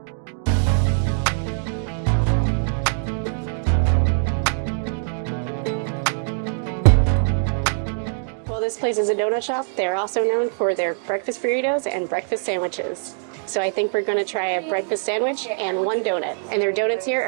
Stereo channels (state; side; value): silent; left; digital silence